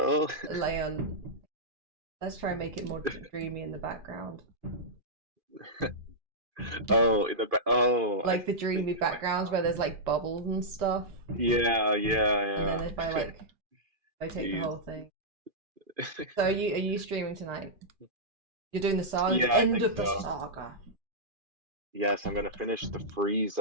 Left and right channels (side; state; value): left; late; 2.4 ms